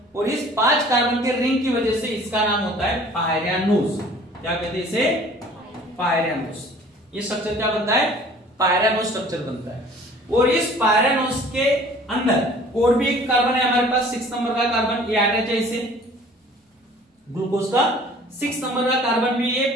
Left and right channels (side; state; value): both; normal; correlation 0.50